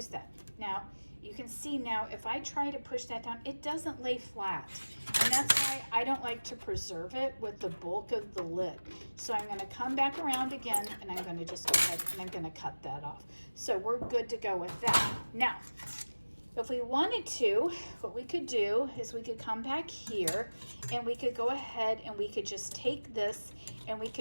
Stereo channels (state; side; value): inverted; both; correlation -1.00